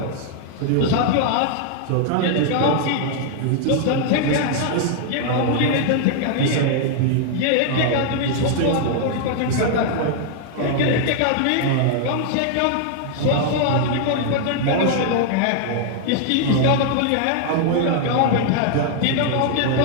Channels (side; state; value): both; different; correlation 0.00